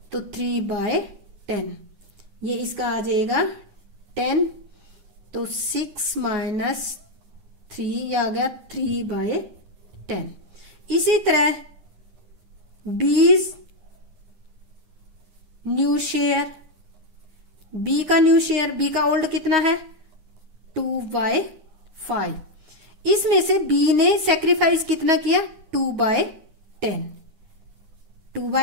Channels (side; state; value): left; late; 9.5 ms